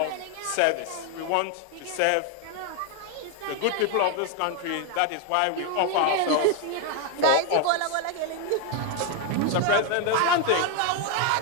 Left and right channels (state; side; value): different; both; correlation 0.01